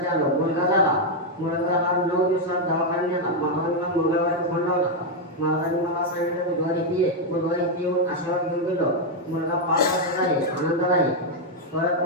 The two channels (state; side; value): normal; both; correlation 0.00